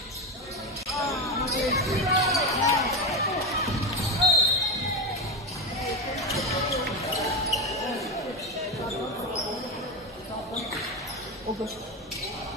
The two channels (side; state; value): both; normal; correlation 0.15